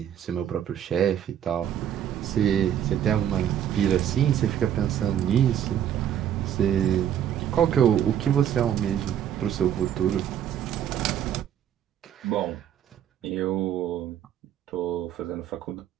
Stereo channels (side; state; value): left; quieter; 10.0 dB